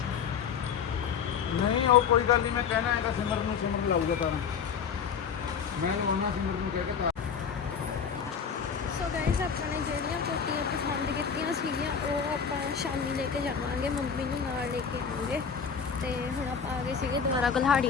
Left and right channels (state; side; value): quieter; right; 6.7 dB